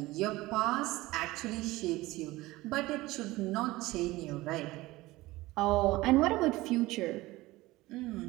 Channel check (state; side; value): quieter; left; 19.2 dB